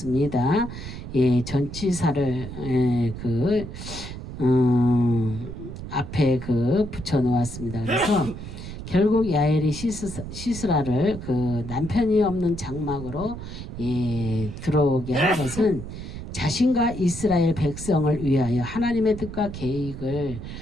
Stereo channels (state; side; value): noise; right; rumble, 10 dB below the sound